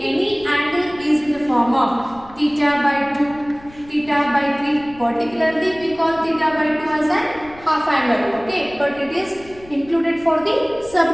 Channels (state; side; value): noise; left; rumble, 23 dB below the sound